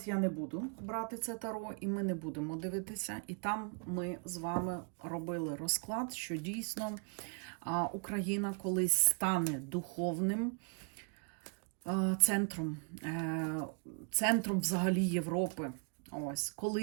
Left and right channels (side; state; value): left; quieter; 39.1 dB